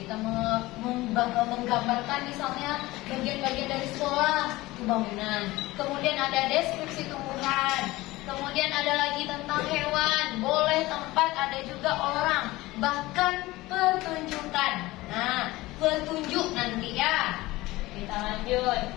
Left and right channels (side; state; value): right; quieter; 19.2 dB